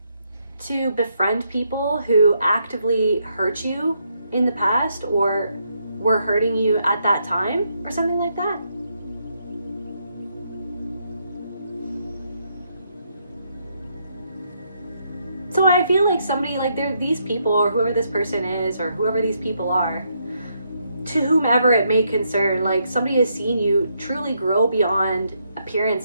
to befriend people who actively hurt you in the past, or were hurting you at that time, or something like that. So I feel like somebody, like these people, or whoever this person is, or whoever these people are, to whomever it may concern, like somebody has seen you truly grow beyond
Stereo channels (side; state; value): both; inverted; correlation -0.77